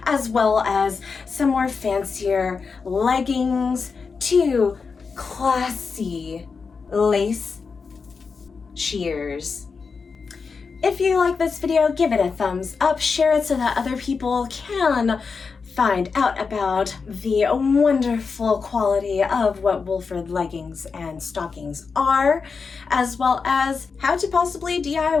as well as some more fancier leggings to classy lace sheers. If you like this video, give it a thumbs up, share it so that other people can find out about the wonderful quality of what Wolford leggings and stockings are, as well as how to possibly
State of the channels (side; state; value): right; quieter; 5.1 dB